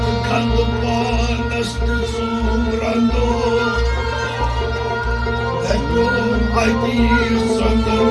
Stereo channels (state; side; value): identical; both; correlation 1.00